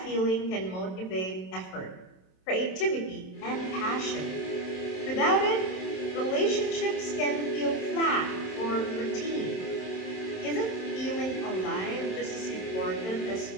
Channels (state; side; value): late; right; 27 ms